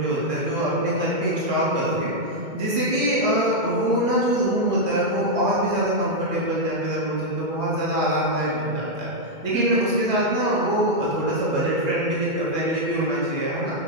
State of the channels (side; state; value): left; late; 2.2 ms